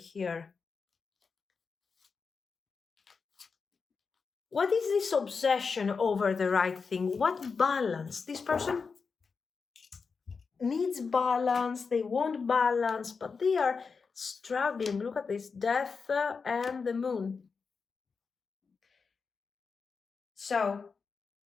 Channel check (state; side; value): quieter; right; 5.1 dB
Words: What is this obsession over the right thing? What balance? This person needs balance. They want balance, but they are struggling. Look at this, Death and the Moon. So